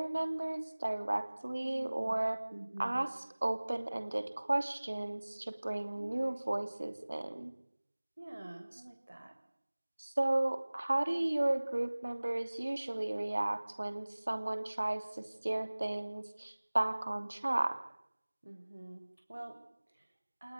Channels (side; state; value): both; inverted; correlation -1.00